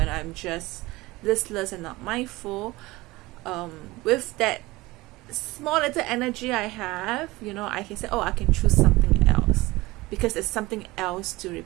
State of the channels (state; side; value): quieter; left; 20.5 dB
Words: I'm just listless and not mindful, with that small little energy I have, I can say, oh, I can choose something else, because there's something else to